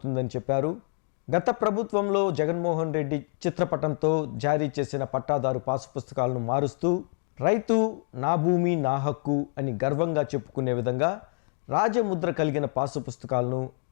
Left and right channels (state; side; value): silent; right; 58 dB below the other